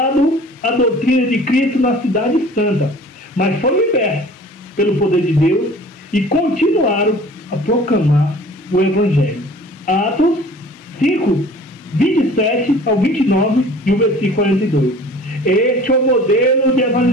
a doutrina de Cristo na cidade santa, mas foram libertos pelo poder de Deus e continuaram a proclamar o evangelho. Atos 5, 27 ao 29 e o versículo 42. Este é o modelo de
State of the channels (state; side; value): normal; both; correlation 0.46